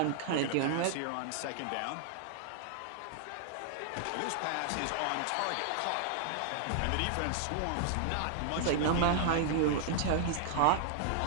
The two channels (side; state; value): both; different; correlation -0.01